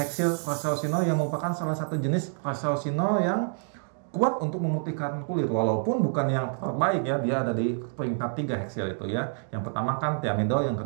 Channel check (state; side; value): silent; left; digital silence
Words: Resorcinol yang merupakan salah satu jenis Resorcinol yang kuat untuk memutihkan kulit. Walaupun bukan yang terbaik ya, dia ada di peringkat 3 heksil itu ya. Yang pertama kan thiamidol, yang